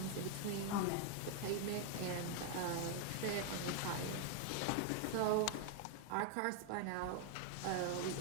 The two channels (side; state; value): both; different; correlation 0.00